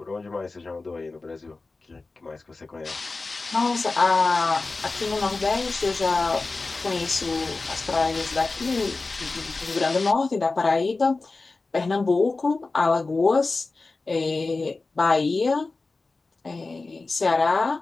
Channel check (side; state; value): right; quieter; 3.6 dB